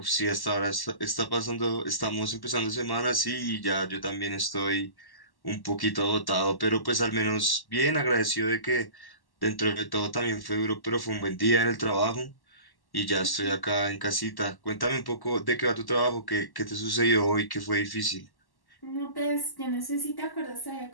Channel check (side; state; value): right; late; 1.1 ms